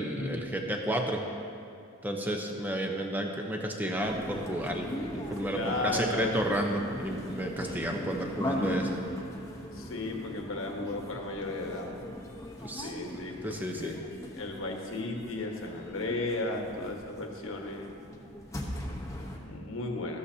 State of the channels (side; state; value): both; normal; correlation 0.49